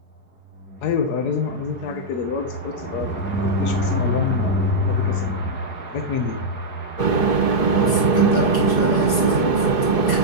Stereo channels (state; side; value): late; right; 4.8 ms